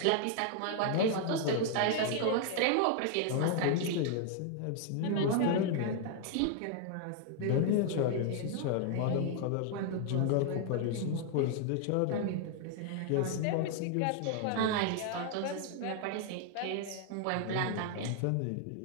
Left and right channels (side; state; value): both; different; correlation 0.00